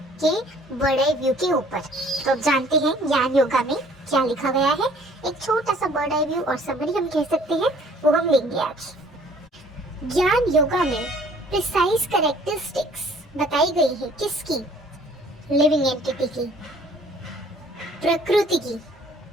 के बड़े व्यू के ऊपर। तो अब जानते हैं ज्ञान योगा में क्या लिखा गया है। एक छोटा सा बड़ा व्यू और समरी हम कह सकते हैं, वो हम लेंगे आज। ज्ञान योगा में प्रिसाइज कैरेक्टरिस्टिक्स बताई गई है किसकी? लिविंग एंटिटी की, प्रकृति की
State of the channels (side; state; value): both; normal; correlation 0.56